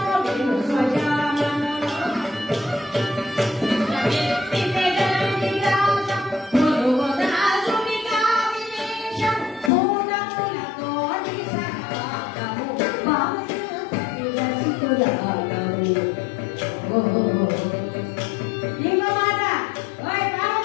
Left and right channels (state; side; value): drops out; right; at 9.7 s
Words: ఇంకో మాట, ఓయ్